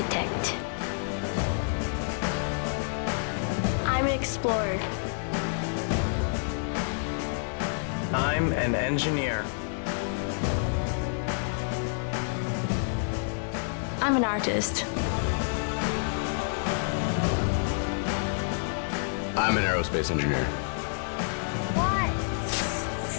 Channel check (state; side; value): silent; right; digital silence